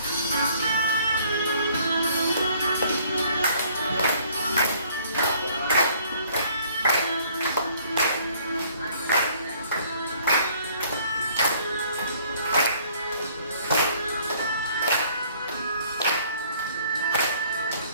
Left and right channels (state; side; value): inverted; both; correlation -0.60